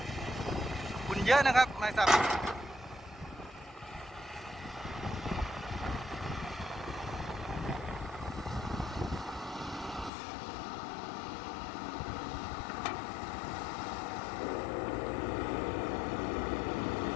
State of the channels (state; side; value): drops out; right; at 10.1 s